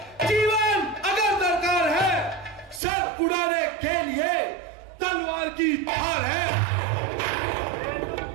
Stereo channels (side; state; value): left; drops out; at 2.8 s